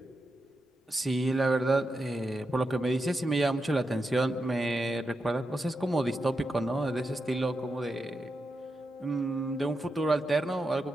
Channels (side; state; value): both; normal; correlation 0.87